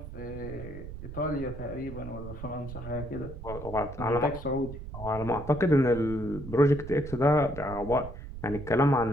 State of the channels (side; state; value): right; noise; rumble, 11 dB below the sound